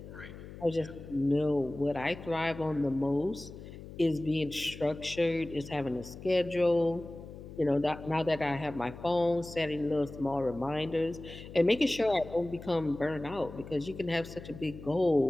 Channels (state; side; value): noise; left; hum, 14 dB below the sound